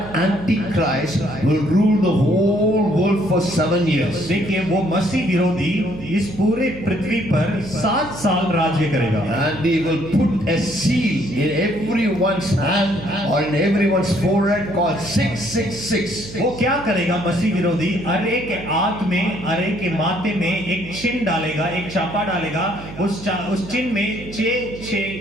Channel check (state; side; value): noise; right; hum, 14 dB below the sound